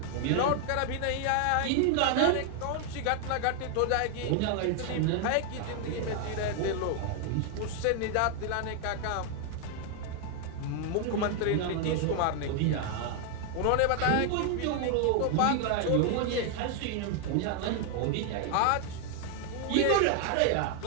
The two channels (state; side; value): different; both; correlation 0.00